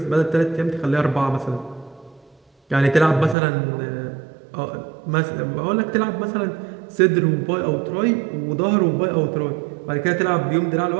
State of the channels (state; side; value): drops out; left; at 3.4 s